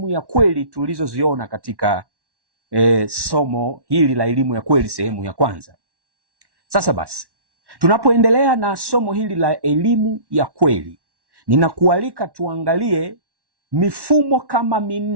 ya kweli tulizoziona katika somo hili la elimu ya kweli sehemu ya kwanza. Sasa basi, tunapoendelea na somo hili la elimu ya kweli, ninakualika tuangalie mifumo kama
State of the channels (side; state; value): left; late; 1.1 ms